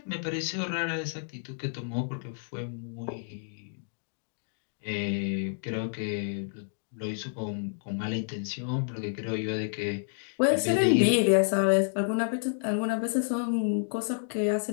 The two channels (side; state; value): right; silent; digital silence